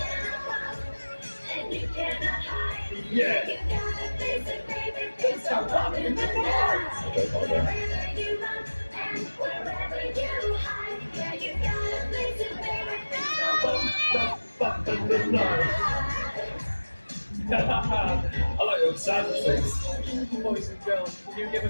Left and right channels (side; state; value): both; inverted; correlation -1.00